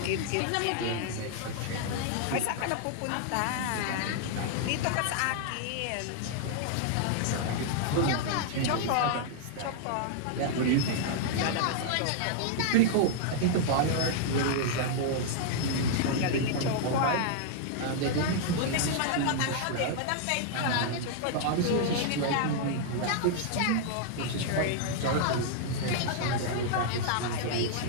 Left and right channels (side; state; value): both; different; correlation -0.01